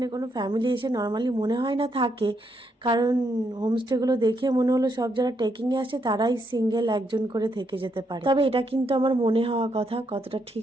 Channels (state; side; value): normal; both; correlation 0.77